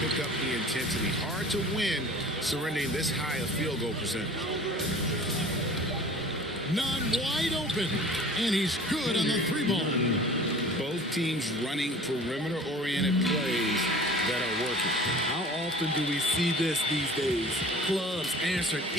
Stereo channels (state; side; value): normal; both; correlation 0.45